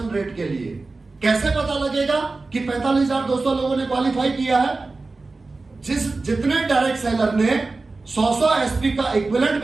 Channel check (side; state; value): left; quieter; 3.6 dB